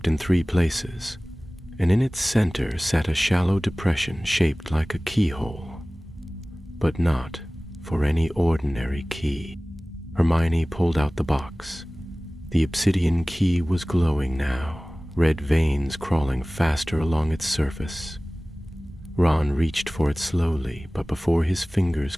in 3 places, and in its center sat a shallow depression shaped like a keyhole. But not for any ordinary key. Hermione pulled out the box. The obsidian key was glowing now, red veins crawling faster along its surface. Ron reached for it slowly, but before his fingers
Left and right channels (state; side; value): normal; both; correlation 0.98